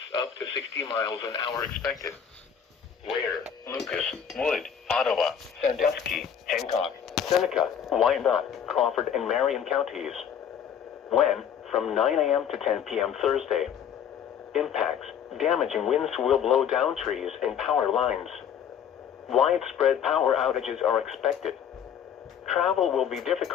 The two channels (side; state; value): right; quieter; 8.3 dB